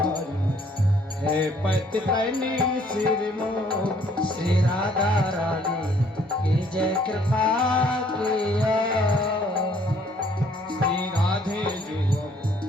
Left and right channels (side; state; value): both; normal; correlation 0.62